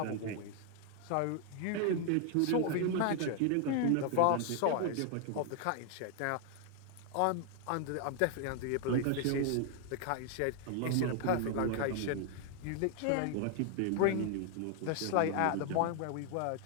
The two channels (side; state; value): both; different; correlation 0.00